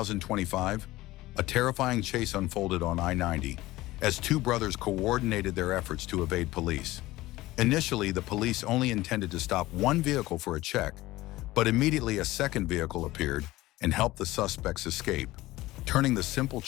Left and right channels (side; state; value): right; quieter; 17.9 dB